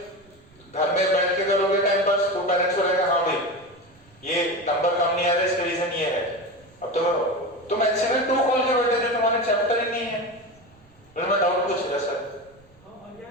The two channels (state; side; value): noise; right; rumble, 29 dB below the sound